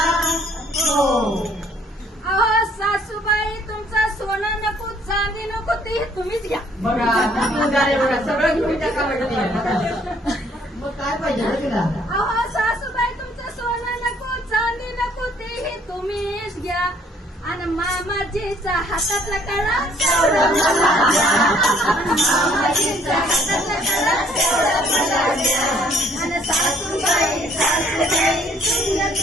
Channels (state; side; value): normal; both; correlation 0.62